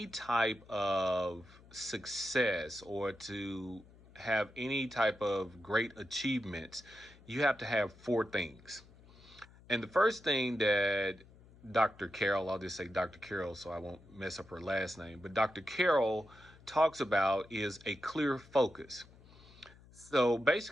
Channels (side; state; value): left; noise; hum, 23 dB below the sound